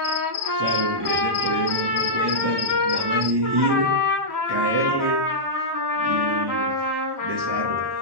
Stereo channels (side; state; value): left; late; 1.1 ms